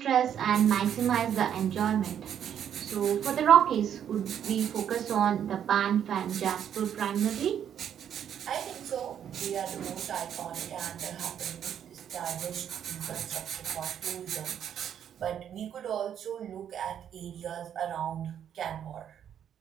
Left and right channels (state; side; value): quieter; left; 9.2 dB